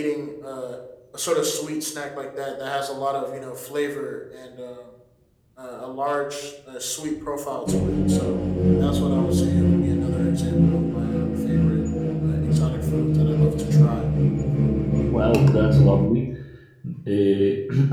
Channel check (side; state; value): both; identical; correlation 1.00